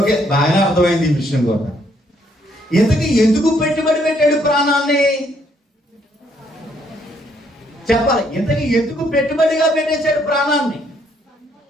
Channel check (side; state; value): both; normal; correlation 0.70